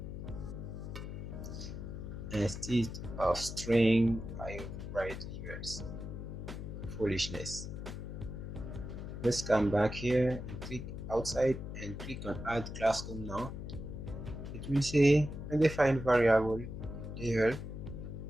instead of string I write levels. Foolishness. Let's come back here and click outside and click on add classroom now. It will say undefined variable level.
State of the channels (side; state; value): left; noise; hum, 8 dB below the sound